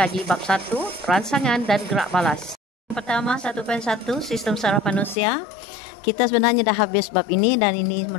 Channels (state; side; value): drops out; right; at 5.2 s